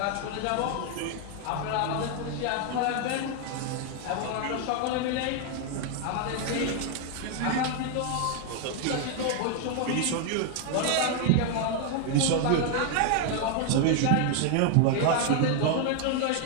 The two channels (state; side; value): different; both; correlation 0.00